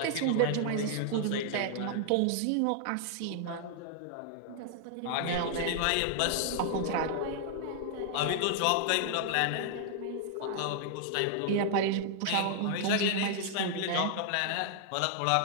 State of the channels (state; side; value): different; both; correlation 0.00